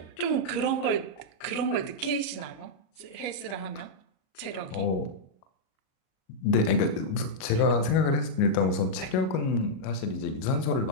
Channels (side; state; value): right; late; 37 ms